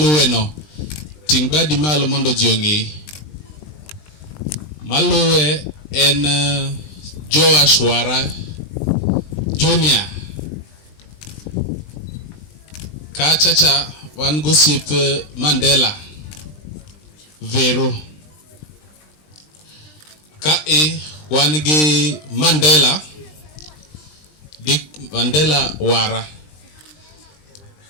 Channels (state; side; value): late; right; 20 ms